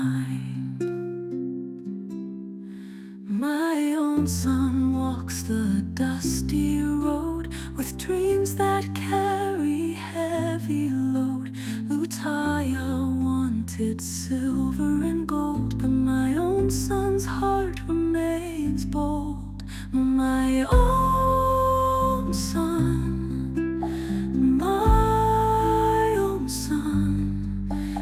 My own son walks the dusty road with dreams that carry heavy load. Lutaya wanted silver and gold, but my own son's heart remains bold. My own son, my own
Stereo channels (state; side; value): identical; both; correlation 1.00